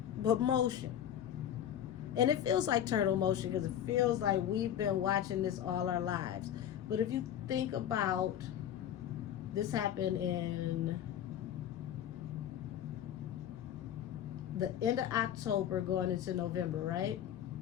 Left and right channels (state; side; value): quieter; right; 10.4 dB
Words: but motion. And it feels like turtle motion because it feels like we've been watching this all our lives. But if you think about, this happened in the end of October going into November, right?